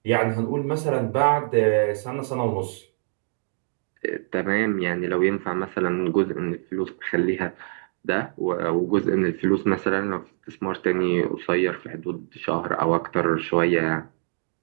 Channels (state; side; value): silent; left; digital silence